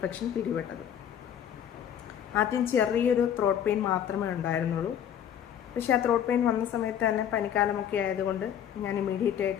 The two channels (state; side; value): quieter; right; 9.5 dB